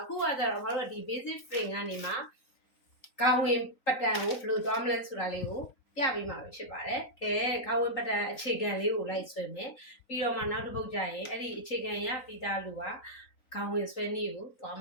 ခုကကြတော့ငါတို့ကဒီ basic frame ကနေမှကောင်းဝင်ပတန်ကိုဘယ်လိုသွားမလဲဆိုတာလေးကိုပြပေးမှာဖြစ်ပါတယ်။ကဲကောင်းဝင်ပတန်အခြေခံလေးကိုလိုက်ဆွဲမယ်။ပြီးတော့မှနောက်တစ်ပုတ်ကျရင်အဲ့ဒီအခြေခံရပြီးသားလူကကောင်းဝင်ဆွဲနည်းကိုသွားမ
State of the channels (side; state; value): right; late; 3.9 ms